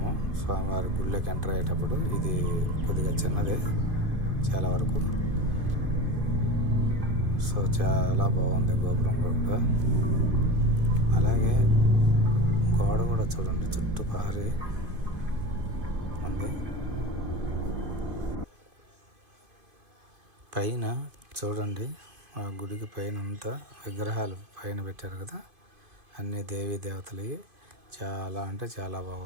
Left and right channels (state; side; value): late; left; 2.5 ms